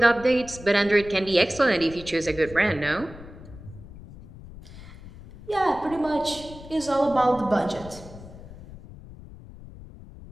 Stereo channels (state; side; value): noise; left; rumble, 16 dB below the sound